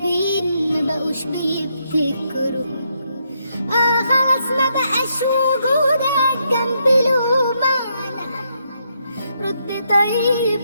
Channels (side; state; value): both; inverted; correlation -0.77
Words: ما بقوش بيبتكروا. خلاص ما بقاش وجودك جنبي له معنى. رد طيب